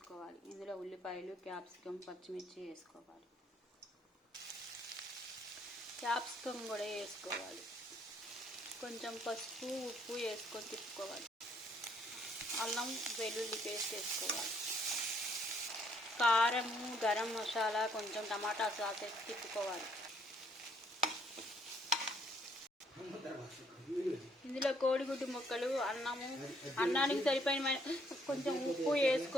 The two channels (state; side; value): normal; both; correlation 0.67